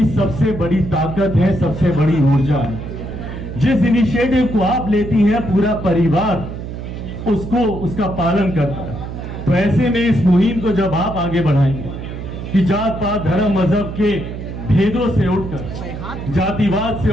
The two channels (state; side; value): noise; right; hum, 8 dB below the sound